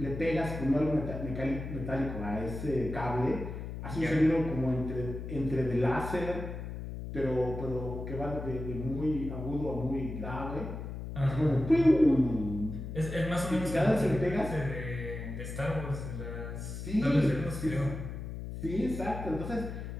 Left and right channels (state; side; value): noise; left; hum, 7 dB below the sound